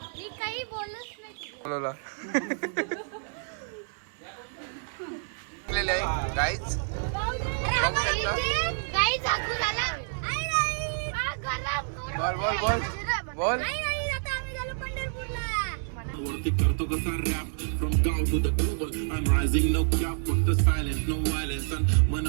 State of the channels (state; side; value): silent; left; 59 dB below the other